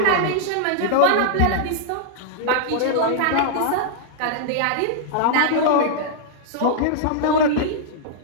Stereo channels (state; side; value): different; both; correlation -0.01